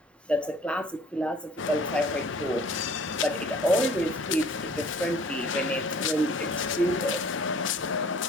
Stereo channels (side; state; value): both; normal; correlation 0.52